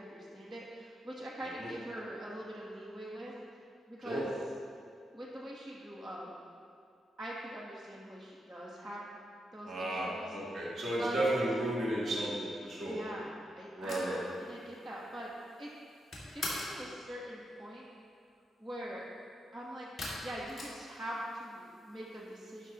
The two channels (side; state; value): both; normal; correlation 0.83